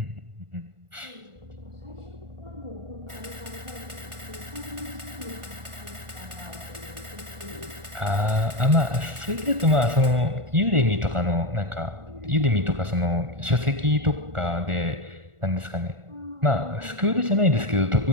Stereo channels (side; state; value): left; late; 1.4 ms